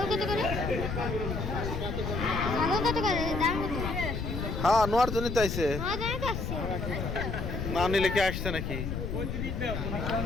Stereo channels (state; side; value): noise; left; rumble, 3 dB below the sound